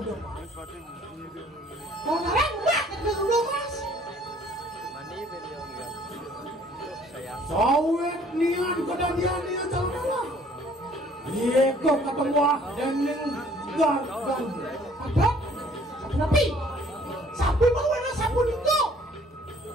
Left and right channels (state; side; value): normal; both; correlation 0.57